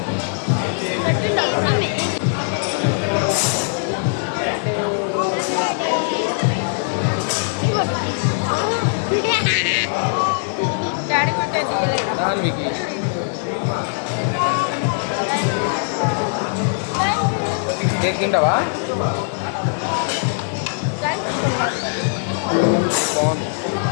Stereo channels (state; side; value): silent; right; digital silence